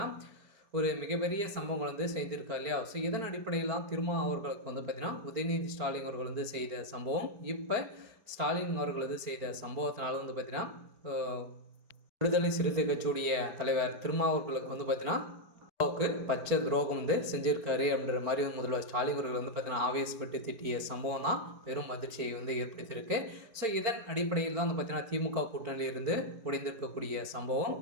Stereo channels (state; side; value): late; left; 4.5 ms